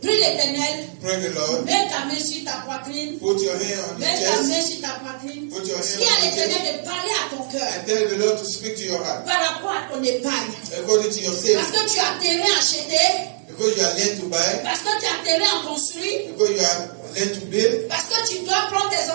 Prie l'Éternel. Pray the Lord. Mets ta main sur ta poitrine. Put your hand on your Mets ta main chest. sur ta poitrine. Put your hand Dis à on your l'Éternel chest. de parler à ton cœur And tell the Lord to speak to your heart. par rapport à ton épargne. According to your Parce savings. que tu as terrain acheté. Because you are led to buy. Parce que tu as terrain à construire. Because you are led to build. Parce que tu dois prendre tes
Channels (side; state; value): left; silent; digital silence